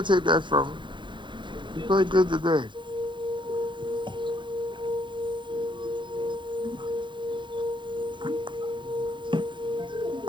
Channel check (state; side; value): late; left; 0.23 ms